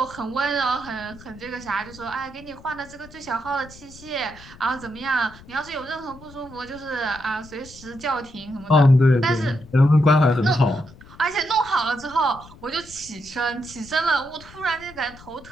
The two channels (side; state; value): left; noise; rumble, 20 dB below the sound